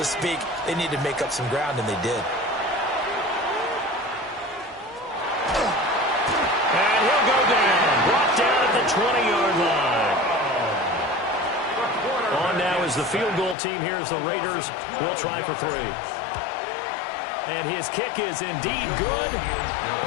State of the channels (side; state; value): right; drops out; at 13.6 s